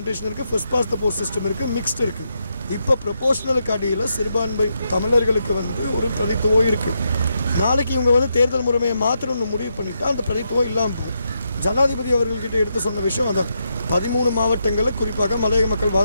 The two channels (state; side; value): inverted; both; correlation -0.82